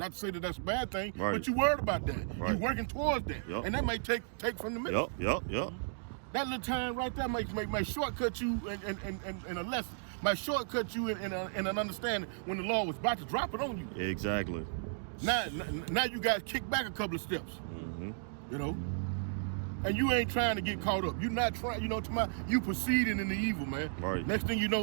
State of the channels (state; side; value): silent; left; digital silence